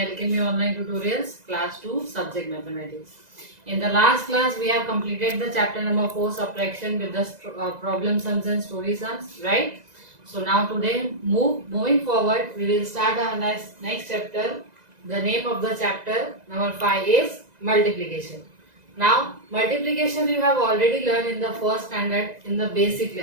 Online Tutorials Class 2 Subject Mathematics. In the last class we have completed the chapter number 4 subtraction with the problem sums and story sums, right? So now today moving forward we will start our next chapter. The name of the chapter number 5 is multiplication. Now multiplication you have already learned in the first standard in the basic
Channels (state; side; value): late; left; 2.0 ms